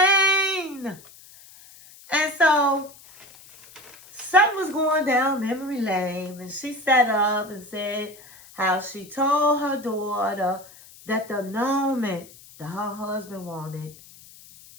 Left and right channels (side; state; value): left; noise; hiss, 22 dB below the sound